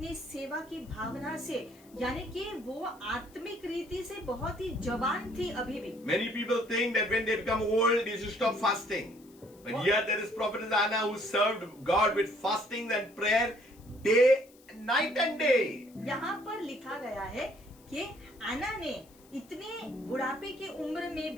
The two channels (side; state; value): left; noise; hiss, 27 dB below the sound